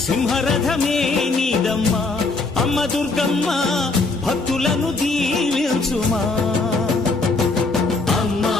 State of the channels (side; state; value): right; quieter; 3.6 dB